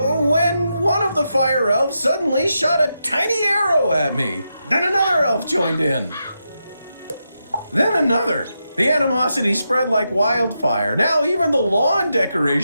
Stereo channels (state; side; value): inverted; both; correlation -0.85